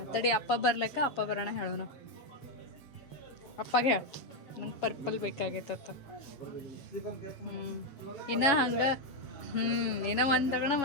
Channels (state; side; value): late; right; 7.2 ms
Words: ತಡಿ, ಅಪ್ಪ ಬರ್ಲಕ್ಕ, ಅಪ್ಪ ಬರೋಣ ಹೇಳೋಣ. ಅಪ್ಪಗೆ ಹೇಳ ನಂಗೆ ಪರ್ಪಲ್ ಬೇಕಾಗೈತತ್ತ. ಇನ್ನ ಹಂಗೆ ಇನ್ನ ಒಂದು ತಗೋಣ,